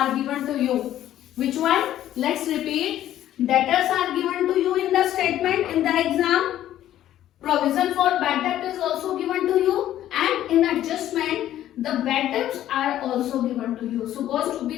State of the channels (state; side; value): quieter; right; 12.4 dB